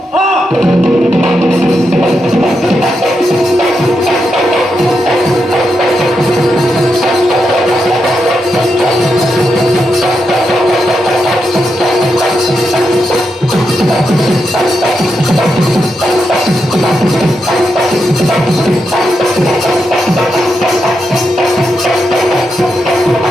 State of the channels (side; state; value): both; normal; correlation 0.85